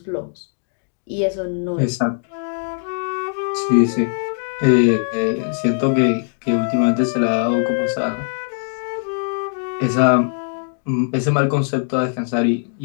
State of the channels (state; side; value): silent; right; digital silence